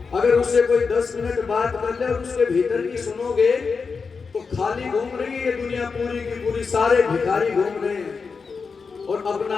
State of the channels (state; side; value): quieter; right; 5.1 dB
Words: अगर उससे कोई 10 मिनट बात कर ले और उसके भीतर की सुनोगे तो खाली घूम रही है ये दुनिया पूरी की पूरी, सारे भिखारी घूम रहे हैं और अपना